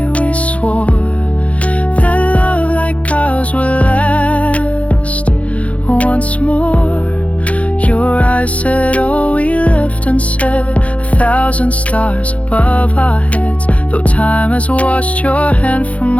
we swore that love like ours would last once more. Your eyes said all we left unsaid, 1,000 stars above our heads. Though time has washed your hand from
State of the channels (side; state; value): right; late; 0.065 ms